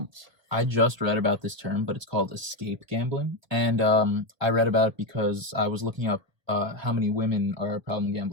I just read about this term, but it's called escape gambling. And I read about it because I was looking up how many women are problem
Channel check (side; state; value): left; late; 1.0 ms